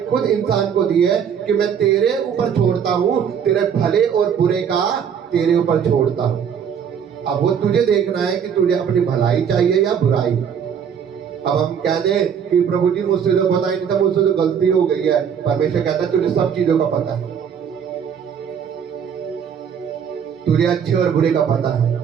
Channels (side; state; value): left; quieter; 7.7 dB